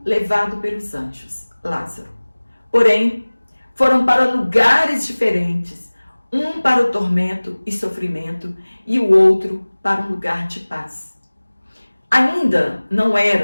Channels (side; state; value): both; inverted; correlation -1.00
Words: levado pelos anjos, Lázaro. Porém, foram para lugares diferentes, um para o tormento e sofrimento e o outro para um lugar de paz. Ainda não